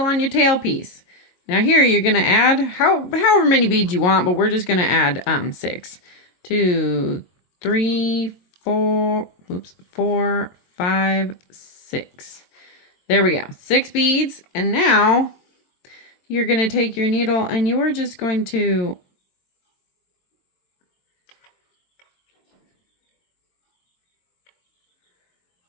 on your tail piece. Now here you're going to add however many beads you want, but we're just going to add 6. 2, 3, 4, 5, 6. There we go. 6 beads. And now you're going to take your needle and you are just going to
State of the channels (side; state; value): right; late; 22 ms